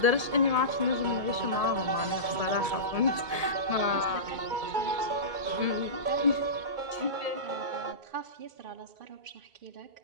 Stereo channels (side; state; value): left; late; 1.7 ms